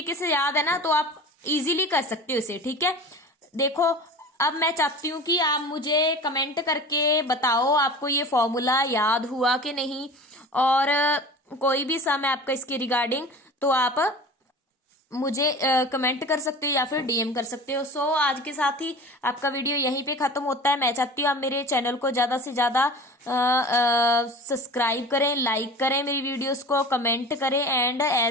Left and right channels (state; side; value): normal; both; correlation 0.37